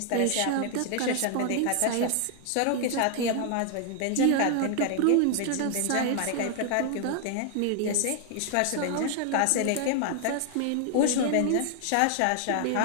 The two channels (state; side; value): different; both; correlation 0.00